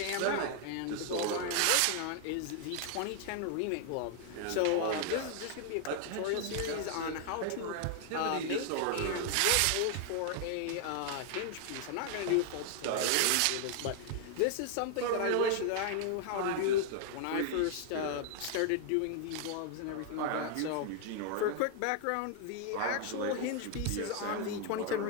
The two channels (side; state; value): both; different; correlation 0.00